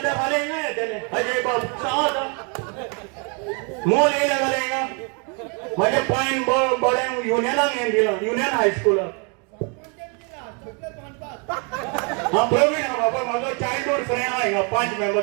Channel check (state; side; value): quieter; left; 34.9 dB